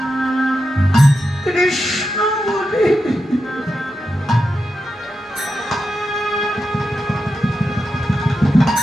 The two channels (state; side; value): normal; both; correlation 0.88